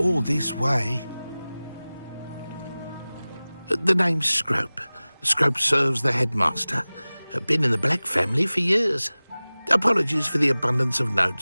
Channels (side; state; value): both; inverted; correlation -0.98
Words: this way. The name's Scrope. Scrope serves the headmaster. Been in the Black family for years. Apologies for the abundance of